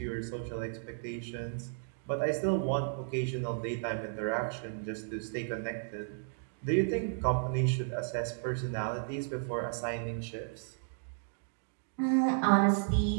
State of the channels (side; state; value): left; silent; digital silence